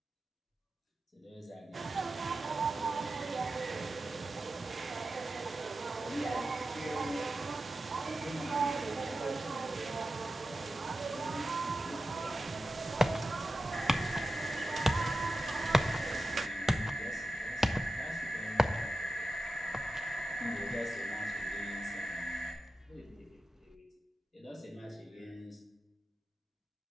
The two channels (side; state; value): both; normal; correlation 0.92